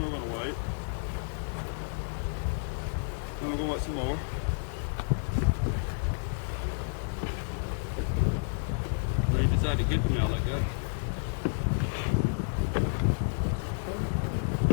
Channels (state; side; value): silent; right; 57 dB below the other